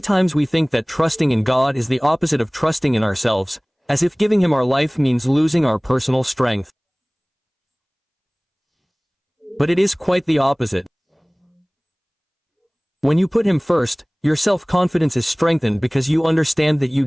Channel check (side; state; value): both; identical; correlation 1.00